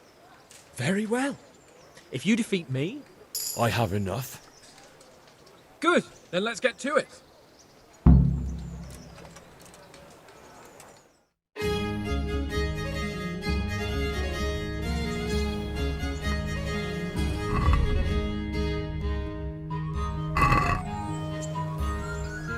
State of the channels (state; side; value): identical; both; correlation 1.00